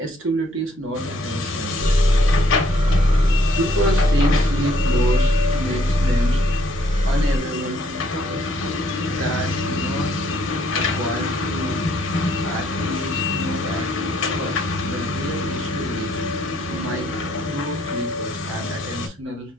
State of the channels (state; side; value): normal; both; correlation 0.67